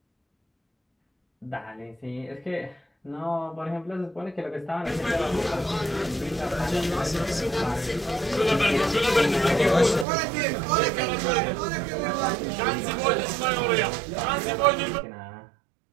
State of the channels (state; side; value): drops out; left; at 10.1 s